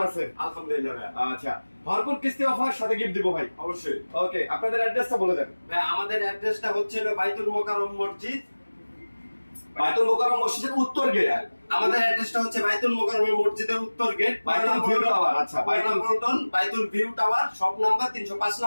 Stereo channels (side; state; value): both; inverted; correlation -1.00